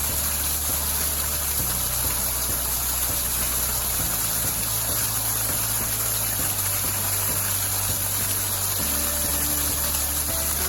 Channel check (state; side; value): identical; both; correlation 1.00